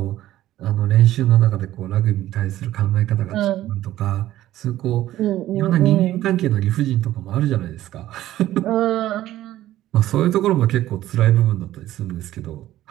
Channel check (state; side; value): quieter; left; 14.1 dB